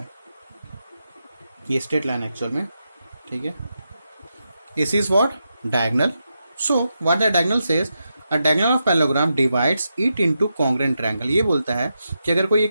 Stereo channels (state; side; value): inverted; both; correlation -0.86